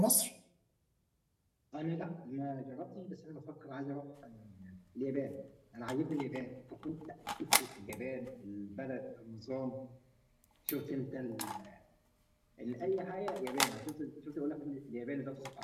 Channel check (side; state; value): both; identical; correlation 1.00